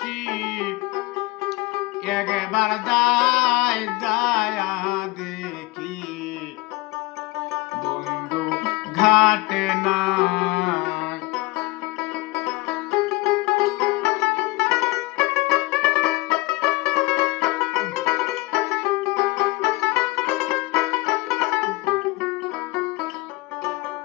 একবার যায় যায় দেখি বন্ধু ঘাটে নাই।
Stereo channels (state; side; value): quieter; right; 22.3 dB